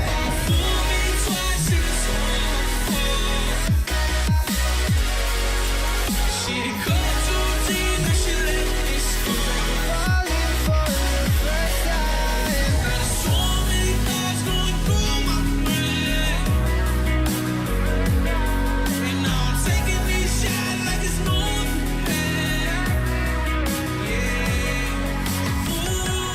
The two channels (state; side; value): identical; both; correlation 1.00